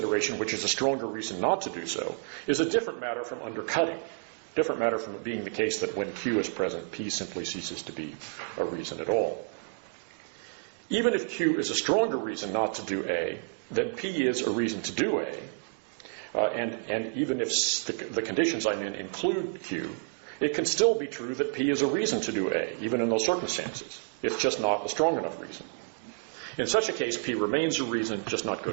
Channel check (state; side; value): silent; left; 58 dB below the other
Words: which is a stronger reason not to do so, is a different matter from undercutting. Different matter from it being the case that when Q is present, P simply ceases to be a reason at all. Even if Q is a stronger reason not to do A, then P is a reason to do A, and even if the conditions I'm in include Q, it can still be true that P is a reason to do A, even in those circumstances. It's just not a strong enough reason. In such a case, P remains a reason, just not